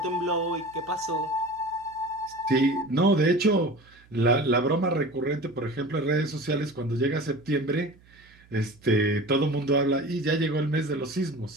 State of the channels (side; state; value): right; noise; hum, 28 dB below the sound